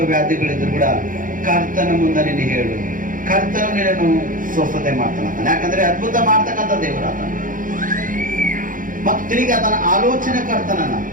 ವ್ಯಾಧಿಗಳಿದ್ರು ಕೂಡ ಕರ್ತನ ಮುಂದೆ ನೀನು ಹೇಳು. ಕರ್ತನು ನಿನ್ನನ್ನು ಸ್ವಸ್ಥತೆ ಮಾಡ್ತಾನೆ. ಯಾಕಂದ್ರೆ ಅದ್ಭುತ ಮಾಡ್ತಕ್ಕಂಥ ದೇವರಾತನ, ಮತ್ತು ತಿರುಗಿ ಆತನ ಆಲೋಚನೆ ಕರ್ತನನ್ನ.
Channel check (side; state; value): left; late; 0.39 ms